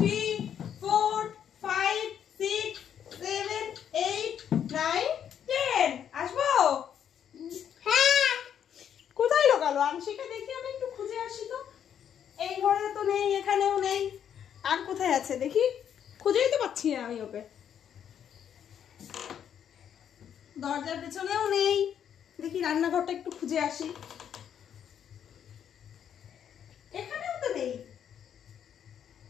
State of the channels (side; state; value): right; quieter; 9.0 dB